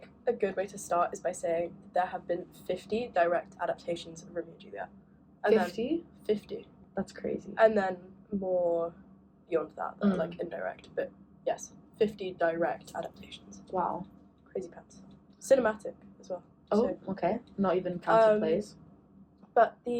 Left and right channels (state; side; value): identical; both; correlation 1.00